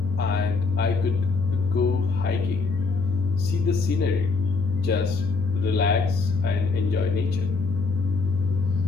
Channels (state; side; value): quieter; right; 4.2 dB